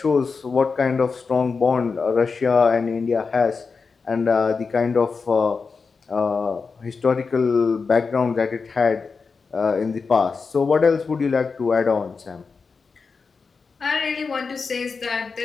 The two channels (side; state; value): right; quieter; 4.9 dB